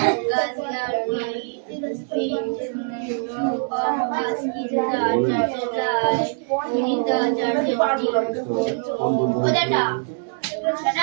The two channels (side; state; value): left; silent; digital silence